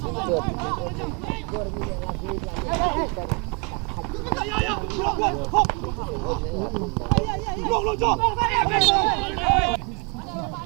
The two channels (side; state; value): left; quieter; 32.9 dB